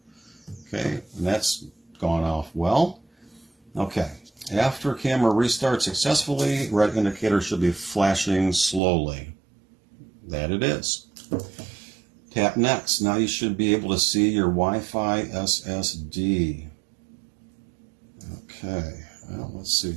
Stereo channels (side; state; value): left; drops out; at 8.8 s